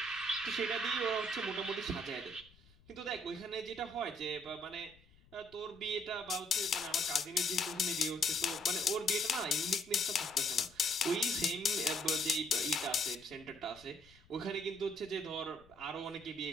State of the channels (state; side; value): noise; left; rumble, 27 dB below the sound